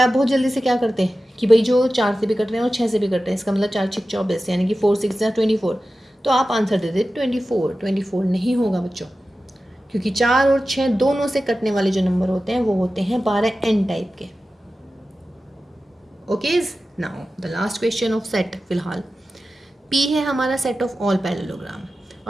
बहुत जल्दी से क्या करते हैं कि भाई जो 4 से भी कट रहे हैं और 6 से भी कट रहे हैं, इसका मतलब 4 6 24, यानी कि 4 6 या 24, तो आप आंसर दे दे 24। 24 नहीं होगा बच्चों, क्योंकि 4 और 6 दोनों से कटने वाले जो नंबर होते हैं वो होते हैं 12n टाइप के। Okay, now the last question of set. फिलहाल P है हमारा सेट ऑफ ऑल पैरेललोग्राम,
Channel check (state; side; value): normal; both; correlation 0.94